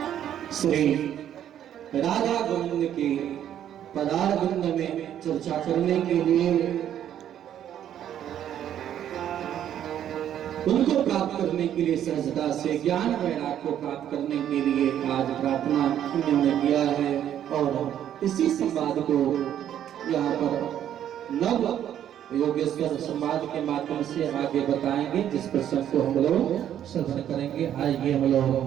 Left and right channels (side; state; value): left; quieter; 10.5 dB